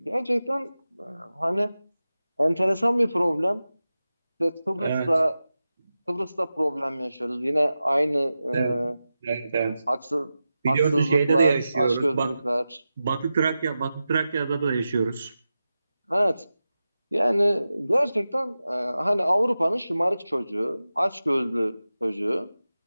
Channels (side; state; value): both; inverted; correlation -0.93